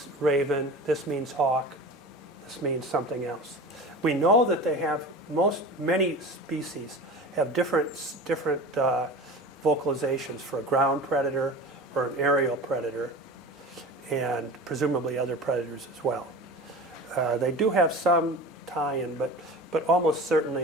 raven, this means hawk, this means something else. We know that they have, many species have different vocalizations for a ground predator or an aerial predator, and presumably other predators as well. They do have some tie-in, but almost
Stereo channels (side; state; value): both; normal; correlation 0.34